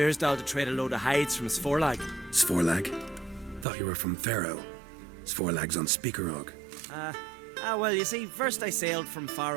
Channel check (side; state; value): left; drops out; at 3.7 s